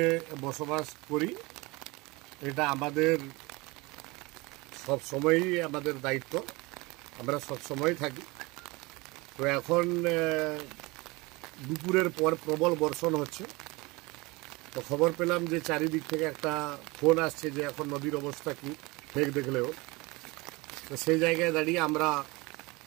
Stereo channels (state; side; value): quieter; left; 24.1 dB